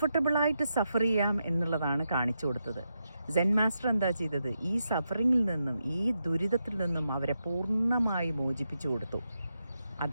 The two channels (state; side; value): inverted; both; correlation -0.85